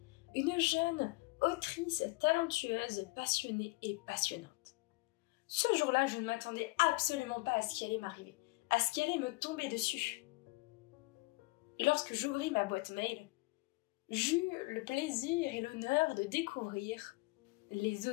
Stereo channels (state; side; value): quieter; right; 23.7 dB